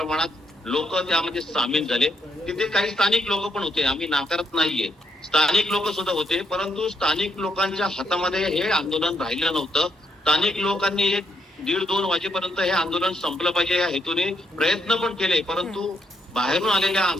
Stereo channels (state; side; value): normal; both; correlation 0.76